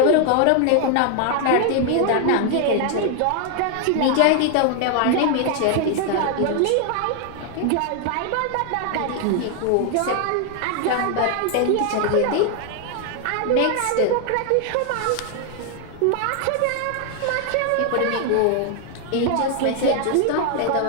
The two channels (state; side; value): different; both; correlation 0.00